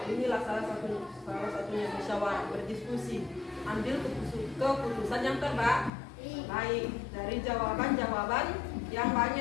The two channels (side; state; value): right; drops out; at 5.9 s